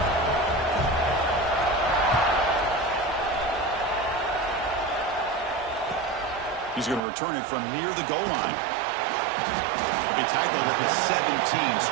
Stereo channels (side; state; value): left; drops out; at 7.0 s